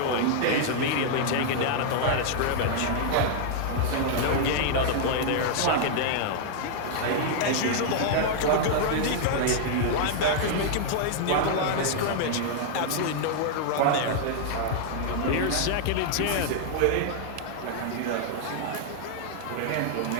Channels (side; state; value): both; different; correlation -0.01